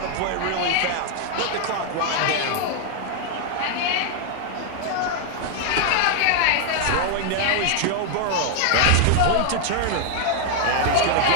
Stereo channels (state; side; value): different; both; correlation 0.00